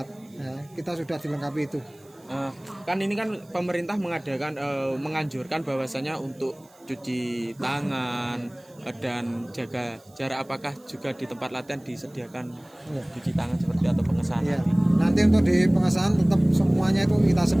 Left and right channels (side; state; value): right; noise; hiss, 29 dB below the sound